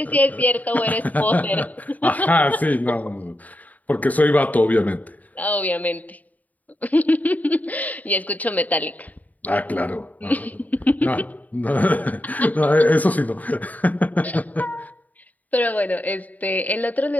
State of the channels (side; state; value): right; late; 0.076 ms